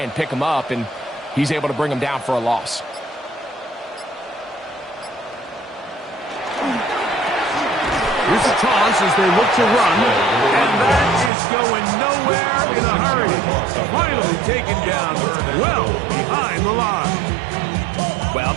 pick him up, and he's able to bring him down for a loss. Here's a toss as they look to run, and that is going nowhere in a hurry. Finally taken down well behind the line. Well,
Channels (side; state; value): left; drops out; at 11.3 s